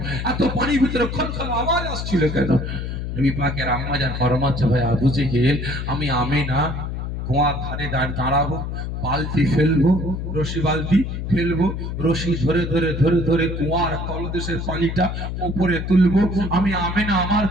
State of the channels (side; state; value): left; noise; hum, 4 dB below the sound